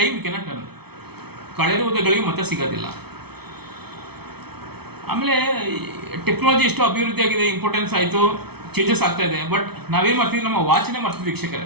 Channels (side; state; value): left; late; 0.97 ms